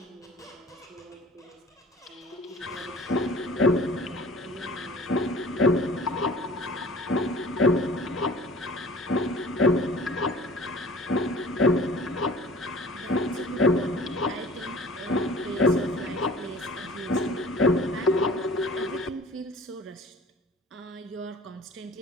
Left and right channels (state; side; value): normal; both; correlation 0.45